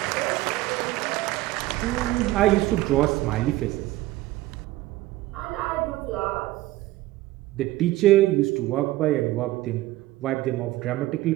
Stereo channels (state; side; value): quieter; left; 17.0 dB